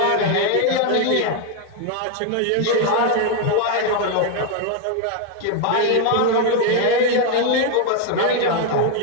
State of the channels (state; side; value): different; both; correlation 0.01